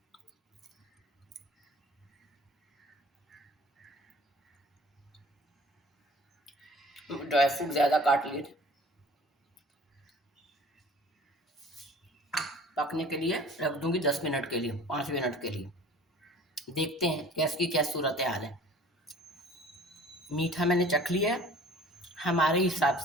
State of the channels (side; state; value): both; normal; correlation 0.47